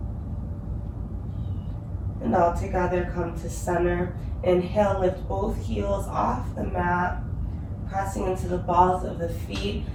And all together, come to center. Inhale, lift both heels off the mat, pressing into the balls of the feet.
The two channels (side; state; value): both; identical; correlation 1.00